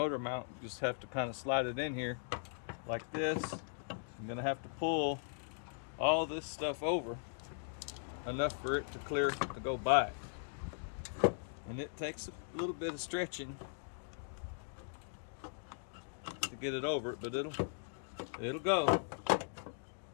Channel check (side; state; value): right; silent; digital silence